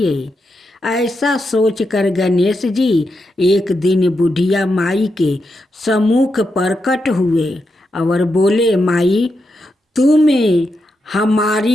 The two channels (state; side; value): normal; both; correlation 0.85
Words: ऐसा सोचकर गणेश जी एक दिन बुढ़िया माई के सम्मुख प्रकट हुए और बोले, माई तुम